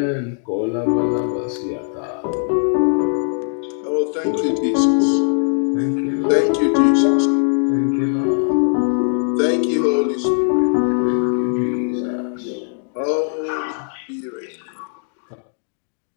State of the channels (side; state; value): right; silent; digital silence